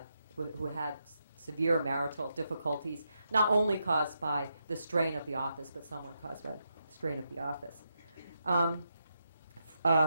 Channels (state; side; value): inverted; both; correlation -0.83